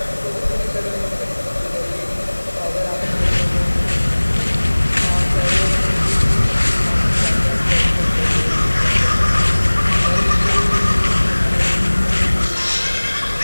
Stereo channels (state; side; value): inverted; both; correlation -1.00